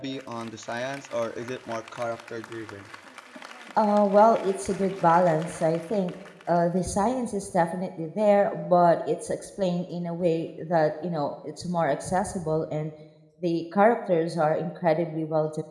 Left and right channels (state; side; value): identical; both; correlation 1.00